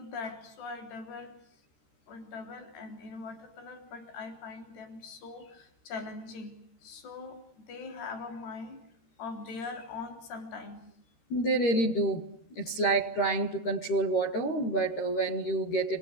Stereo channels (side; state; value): right; late; 13 ms